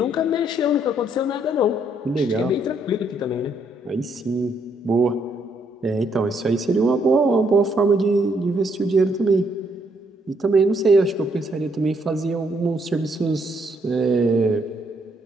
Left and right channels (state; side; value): normal; both; correlation 0.72